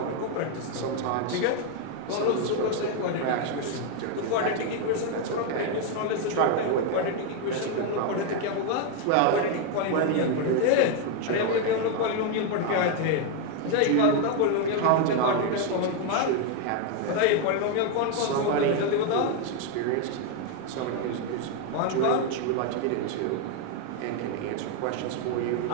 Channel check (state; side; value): different; both; correlation 0.01